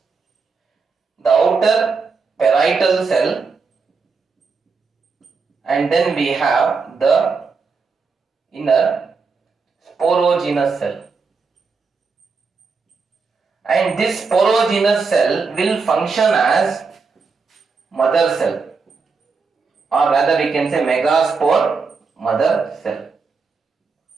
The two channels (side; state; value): left; quieter; 4.8 dB